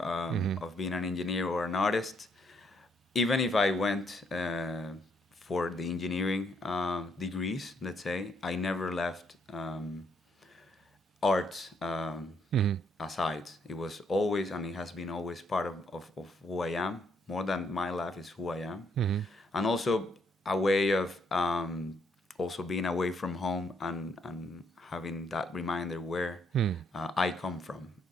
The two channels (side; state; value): both; normal; correlation 0.71